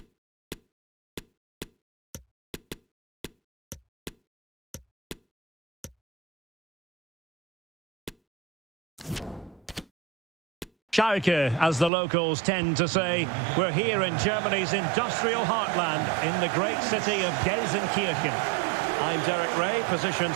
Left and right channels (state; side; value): drops out; left; at 11.9 s